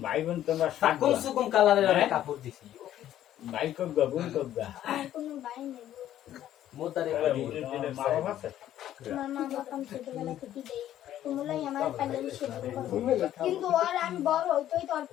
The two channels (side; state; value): right; quieter; 12.1 dB